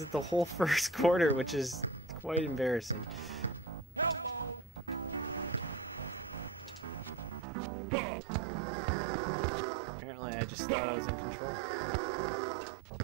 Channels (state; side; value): drops out; left; at 7.5 s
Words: it the whole first quarter, which is quite embarrassing. Apparently, I just thought I was in control.